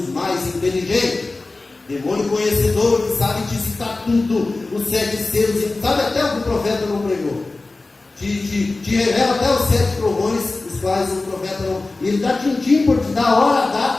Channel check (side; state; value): right; quieter; 3.3 dB